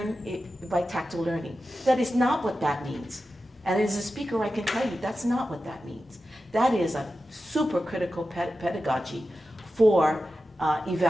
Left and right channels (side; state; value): both; normal; correlation 0.92